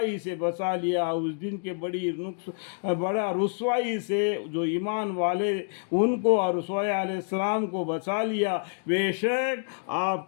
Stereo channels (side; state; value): right; silent; 60 dB below the other